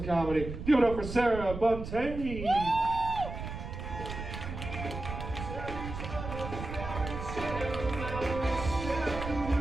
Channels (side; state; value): right; noise; rumble, 8 dB below the sound